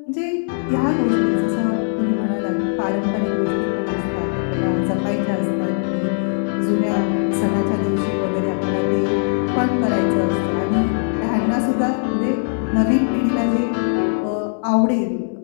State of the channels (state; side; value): silent; right; 66 dB below the other